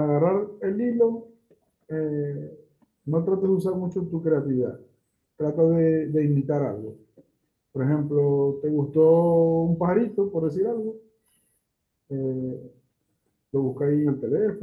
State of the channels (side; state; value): both; identical; correlation 1.00